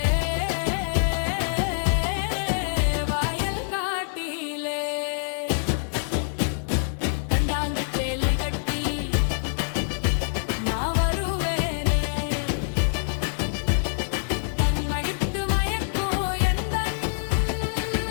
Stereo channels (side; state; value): right; silent; 61 dB below the other